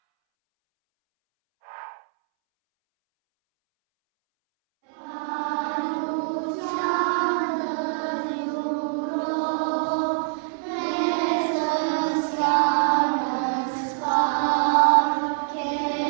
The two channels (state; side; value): silent; left; 62 dB below the other